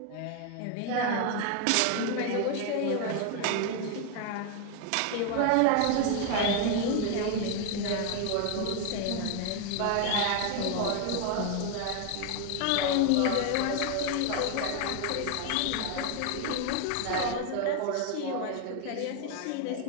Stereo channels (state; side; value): different; both; correlation 0.01